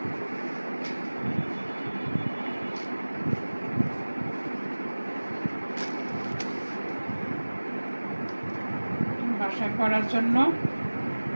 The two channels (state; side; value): inverted; both; correlation -1.00